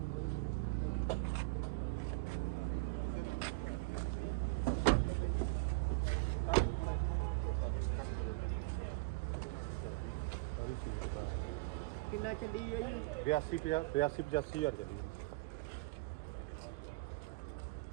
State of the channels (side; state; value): left; quieter; 25.9 dB